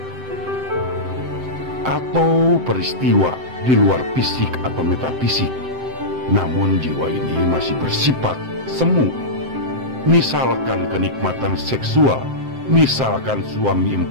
atau peristiwa di luar fisik atau metafisik. Namun jiwa ini masih bersifat semu. Misalkan kenikmatan seksual, misalkan suami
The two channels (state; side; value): late; left; 7.7 ms